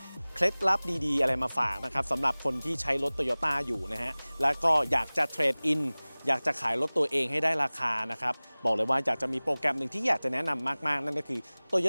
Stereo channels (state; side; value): inverted; both; correlation -1.00